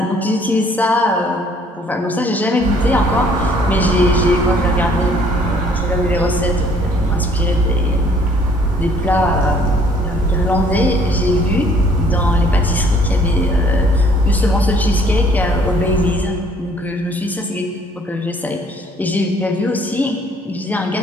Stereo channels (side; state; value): both; normal; correlation 0.60